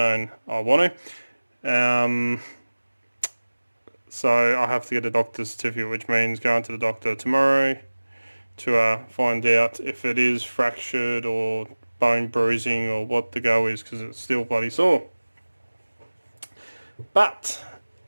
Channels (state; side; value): inverted; both; correlation -1.00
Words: I want to. So I have to get a doctor's certificate, which means going to the doctor tomorrow to find out if it is fractured or bone bruising or what the go is, because it's still bloody sore. But